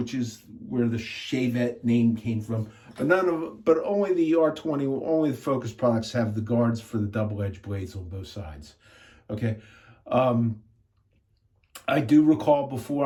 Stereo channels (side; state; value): both; identical; correlation 1.00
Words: is where the Shavette name came from. But only the R20, only the Focus products have the guards for the double-edged blades on both sides. Okay. I do recall before